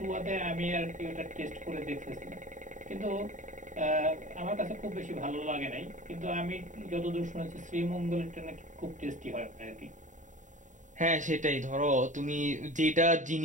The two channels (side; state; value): left; late; 0.36 ms